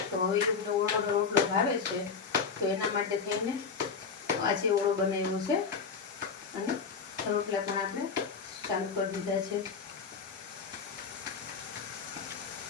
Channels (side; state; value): right; quieter; 5.5 dB